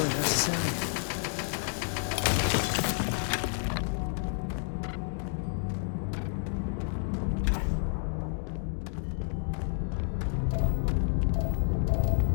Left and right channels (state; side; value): silent; right; digital silence